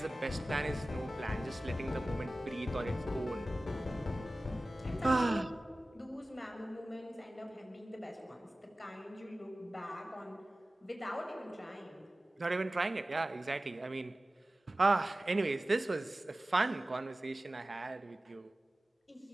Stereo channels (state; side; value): normal; both; correlation 0.97